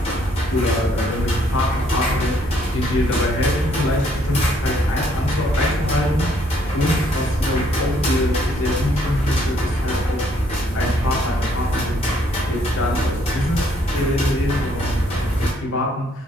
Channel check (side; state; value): both; normal; correlation 0.67